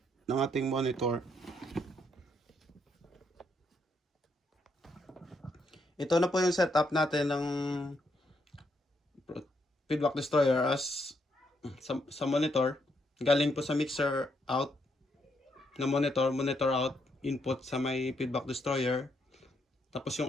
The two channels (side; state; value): both; normal; correlation 0.76